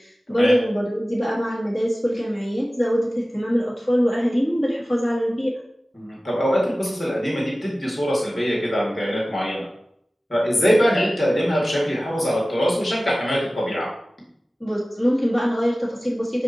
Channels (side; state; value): both; normal; correlation 0.97